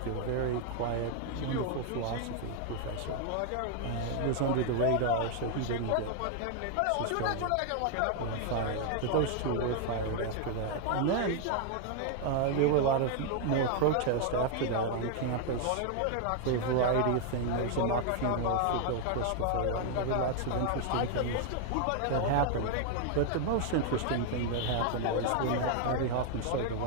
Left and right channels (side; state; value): both; different; correlation 0.00